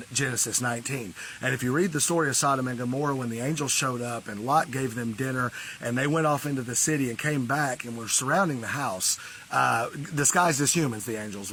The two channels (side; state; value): both; identical; correlation 1.00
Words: Genesis 19. And if you read the story of Sodom and Gomorrah, when the angels showed up and Lot gave them dinner and they went off into the city and came back and were surrounding the house, disguised as humans, the angels